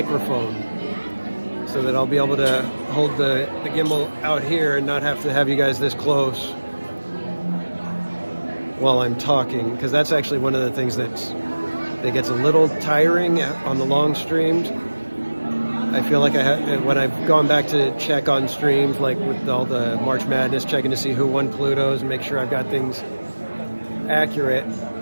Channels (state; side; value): inverted; both; correlation -1.00